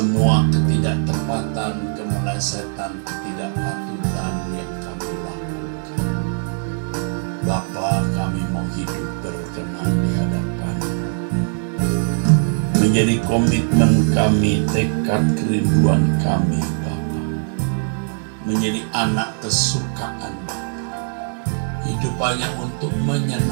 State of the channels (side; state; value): left; silent; 60 dB below the other